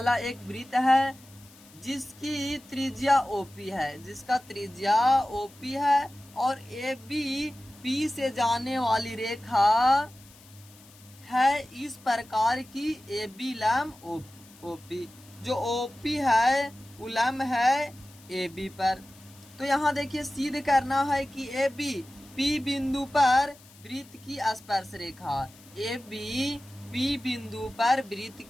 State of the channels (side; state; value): left; noise; hiss, 24 dB below the sound